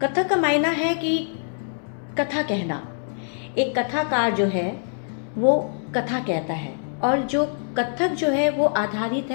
कथक का मायना है कि कथा कहना। एक कथाकार जो है वो कथा कहता है, और जो कथक जो है वो आधारित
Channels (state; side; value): silent; right; 62 dB below the other